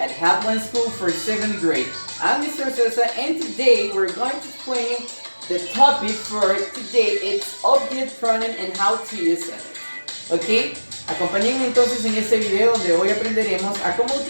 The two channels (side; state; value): both; inverted; correlation -1.00